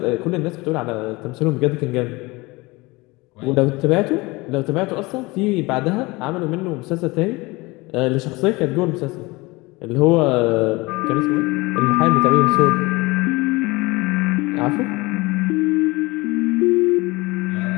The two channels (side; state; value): right; quieter; 23.1 dB